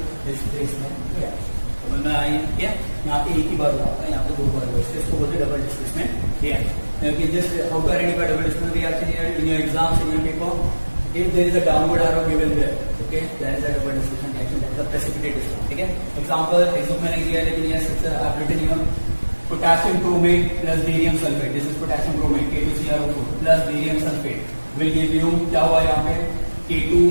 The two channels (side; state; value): both; inverted; correlation -1.00